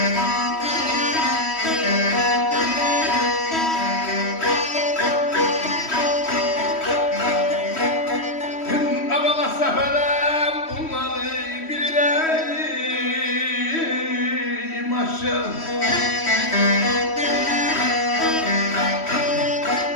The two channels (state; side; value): late; right; 3.1 ms